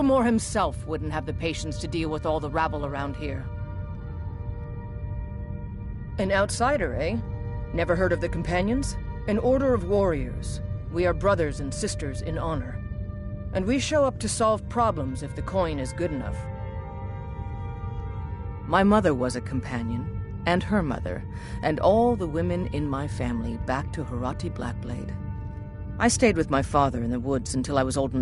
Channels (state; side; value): identical; both; correlation 1.00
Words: himself wouldn't have the patience to deal with all the rabble around here. An outsider, eh? Never heard of the Companions? An order of warriors. We are brothers and sisters in honor. And we show up to solve problems if the coin is good enough. My mother was a companion, and her mother, and all the women in my family back to Harati Blackblade. I stayed with my father in the woods until I was old